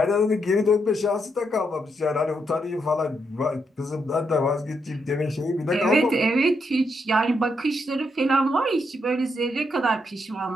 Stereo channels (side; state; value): both; normal; correlation 0.79